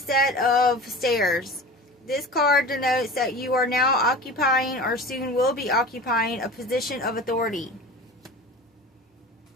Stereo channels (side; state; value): both; normal; correlation 0.36